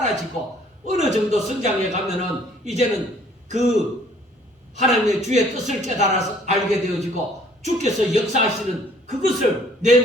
어느 정도 성장해 가면은 이제는 그 하나님의 주의 뜻을 깨달아서 알게 되어지고 주께서 역사하시는 그것을 내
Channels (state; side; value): normal; both; correlation 0.59